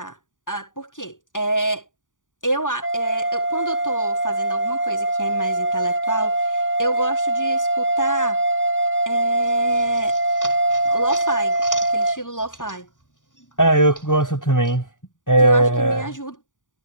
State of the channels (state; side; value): late; right; 0.87 ms